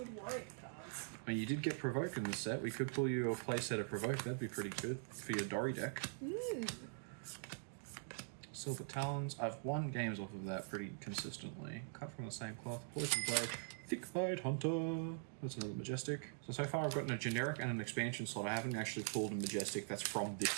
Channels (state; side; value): silent; left; digital silence